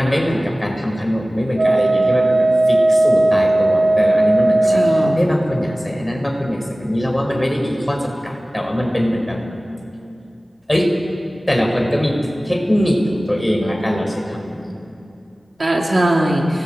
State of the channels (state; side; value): normal; both; correlation 0.98